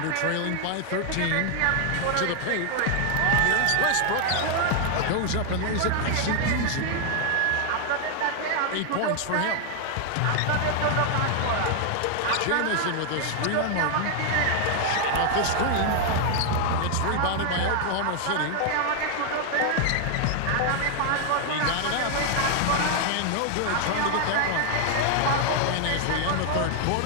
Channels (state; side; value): different; both; correlation 0.00